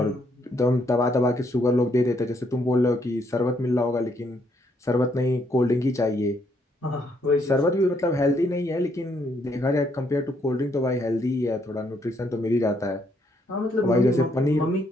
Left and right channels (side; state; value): both; normal; correlation 0.72